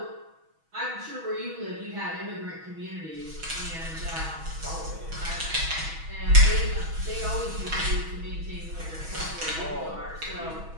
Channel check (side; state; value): left; late; 6.2 ms